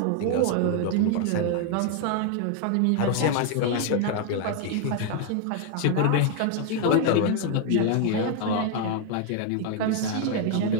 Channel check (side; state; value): both; different; correlation 0.00